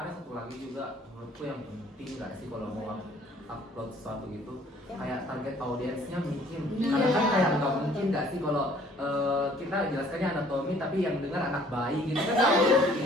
satu lagi juga menurutku yang penting nggak sih kalau mau upload sesuatu gitu, kayak target audiensnya mungkin. Karena kan kayak nggak mungkin nggak sih kalau kita jelaskannya anatomi tapi yang dengar anak bayi gitu kan nggak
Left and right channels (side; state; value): both; normal; correlation 0.57